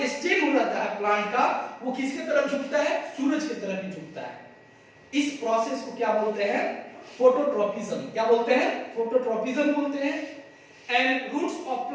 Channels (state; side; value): identical; both; correlation 1.00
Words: स्टेम रहता है प्लांट का, वो किसके तरफ झुकता है? सूरज की तरफ ही झुकता है। इस प्रोसेस को क्या बोलते हैं? फोटोट्रोपिज्म। क्या बोलते हैं? फोटोट्रोपिज्म बोलते हैं। And roots of